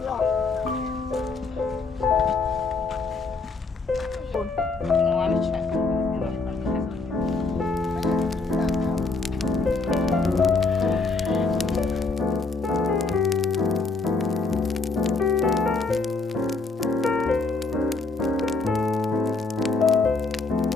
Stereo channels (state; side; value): quieter; right; 3.9 dB